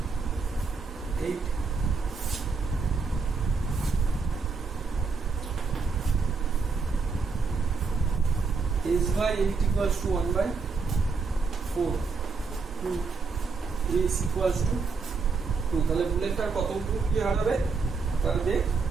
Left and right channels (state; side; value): quieter; left; 4.6 dB